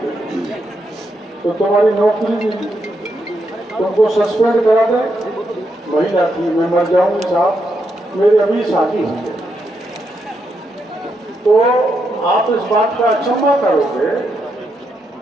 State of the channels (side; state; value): both; normal; correlation 0.81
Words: तो तुम्हारी नौकरी तुमको सस्पेंड करा दे। महिला थी, मैं मर जाऊंगी साहब, मेरी अभी शादी हुई है। तो आप इस बात का अचंभा करोगे